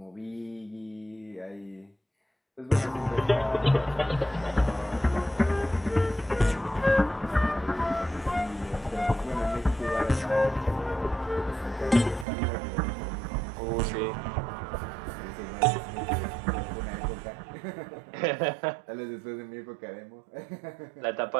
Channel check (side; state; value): left; drops out; at 12.2 s